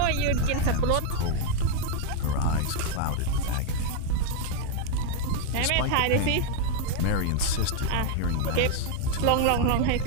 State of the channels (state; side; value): different; both; correlation 0.00